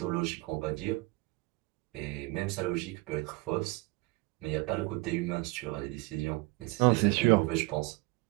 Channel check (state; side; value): quieter; left; 23.7 dB